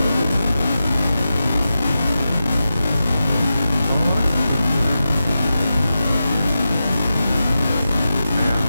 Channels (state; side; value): inverted; both; correlation -0.91